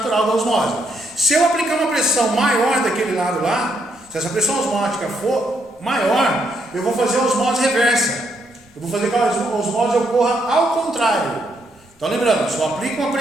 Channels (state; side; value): normal; both; correlation 0.76